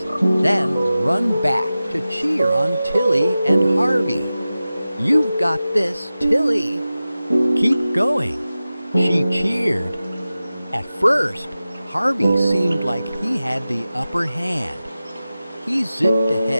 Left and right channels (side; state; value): both; inverted; correlation -0.95